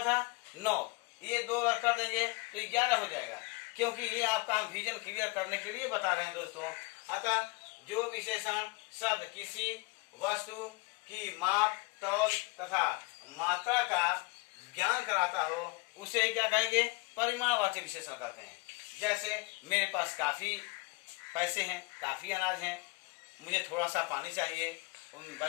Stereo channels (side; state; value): right; quieter; 27.4 dB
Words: था 9, ये 2 अगर कर देंगे तो 11 हो जाएगा, क्योंकि ये आपका हम विजन क्लियर करने के लिए बता रहे हैं दोस्तों। अतः जो विशेषण शब्द किसी वस्तु की माप तौल तथा मात्रा का ज्ञान कराता हो उसे क्या कहेंगे? परिमाणवाचक विशेषण कहते हैं। जैसे मेरे पास काफी पैसे हैं, काफी अनाज है, मुझे थोड़ा सा पानी चाहिए,